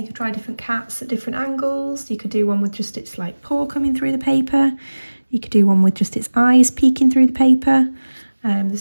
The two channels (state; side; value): inverted; both; correlation -1.00